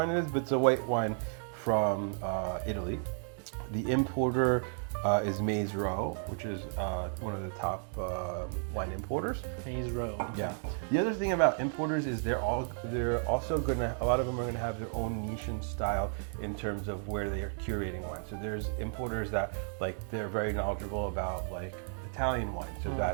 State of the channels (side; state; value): left; silent; 56 dB below the other